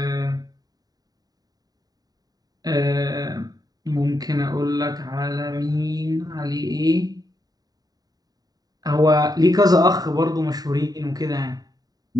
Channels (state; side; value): late; left; 0.18 ms